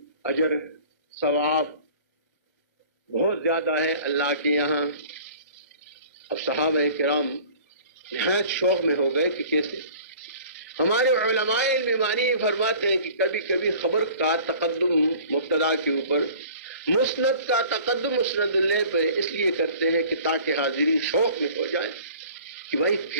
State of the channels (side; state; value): both; inverted; correlation -0.47